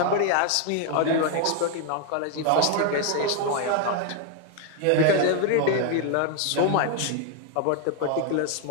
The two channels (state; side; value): different; both; correlation 0.00